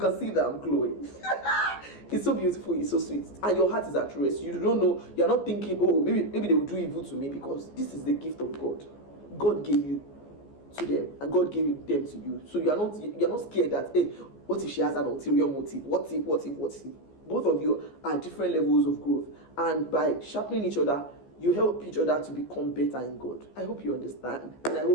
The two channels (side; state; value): right; late; 14 ms